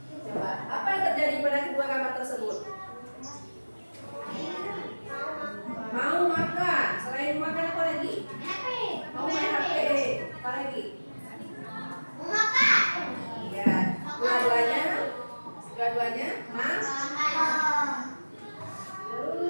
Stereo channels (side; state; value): both; inverted; correlation -1.00